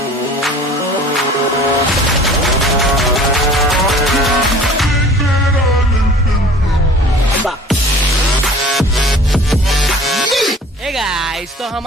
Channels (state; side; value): normal; both; correlation 0.47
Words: Hey guys, तो